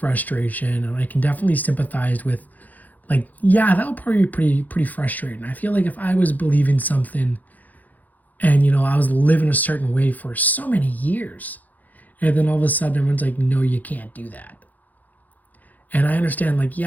and I can definitely sympathize with, like, yeah, that would probably be pretty frustrating. I feel like if I was believing something and, you know, I was living a certain way for so many years, and then all of a sudden everyone's like, no, you can't do that. And I understand, like,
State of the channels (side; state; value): right; late; 0.081 ms